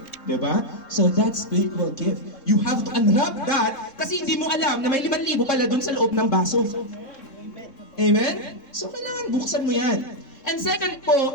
Di ba? So that's spiritual gift. You have to unwrap that kasi hindi mo alam na may 5,000 pala dun sa loob ng baso. Amen? So kailangan buksan mo yan. And second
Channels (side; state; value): right; late; 3.7 ms